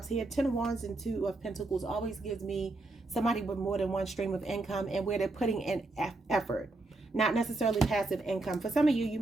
here. Ten of Wands and Two of Pentacles always gives me somebody with more than one stream of income and where they're putting in effort. Not necessarily passive income. For some of you, you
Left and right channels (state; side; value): quieter; left; 3.0 dB